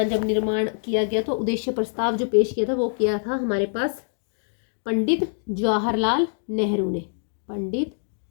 जब निर्माण किया गया तो उद्देश्य प्रस्ताव जो पेश किया था वो किया था हमारे पास पंडित जवाहरलाल नेहरू ने। पंडित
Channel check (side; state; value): right; silent; digital silence